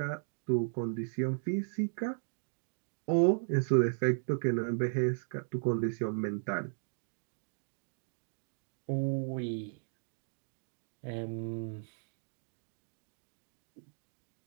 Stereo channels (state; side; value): silent; left; digital silence